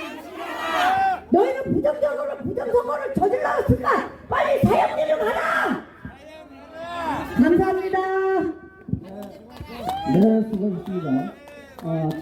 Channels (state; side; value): identical; both; correlation 1.00